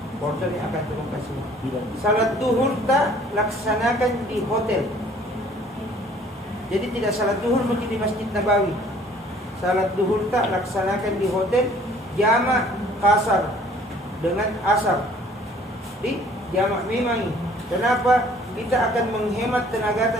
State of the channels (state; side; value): normal; both; correlation 0.56